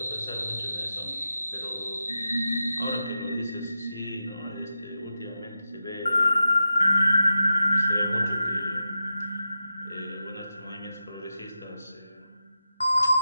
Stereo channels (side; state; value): both; inverted; correlation -0.90